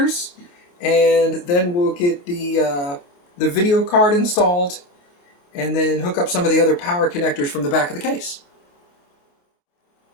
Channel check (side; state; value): right; late; 28 ms